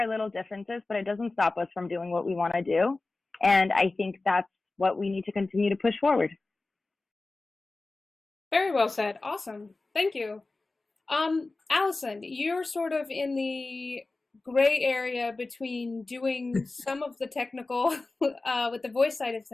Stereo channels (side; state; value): right; quieter; 3.3 dB